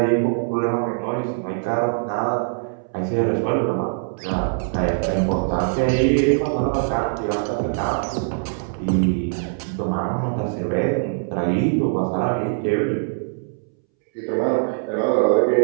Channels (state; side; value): silent; left; 64 dB below the other